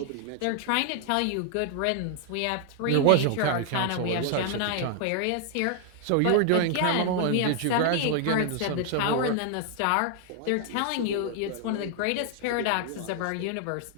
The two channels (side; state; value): both; different; correlation 0.00